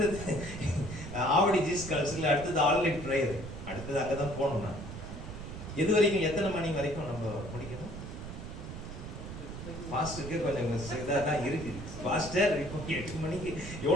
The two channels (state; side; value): noise; right; rumble, 9 dB below the sound